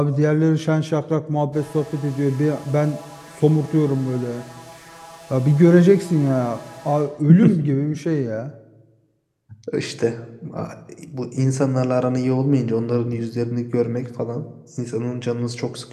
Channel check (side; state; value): both; identical; correlation 1.00